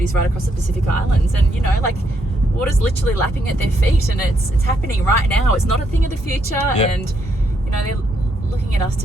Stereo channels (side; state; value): both; normal; correlation 0.76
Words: right across the Pacific Islands, and water's literally lapping at their feet, and it's happening right now. It's not a thing of the future, and they're looking at us